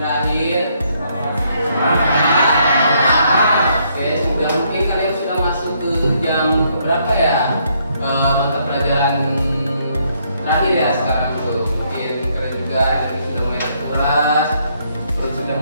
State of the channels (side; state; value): both; inverted; correlation -0.71